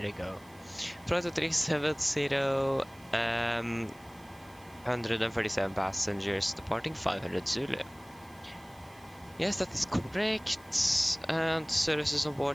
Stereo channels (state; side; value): noise; right; hiss, 27 dB below the sound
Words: you go. Flight 370, 137 passengers, departing 500 Zulu. Yes, that is correct. And services on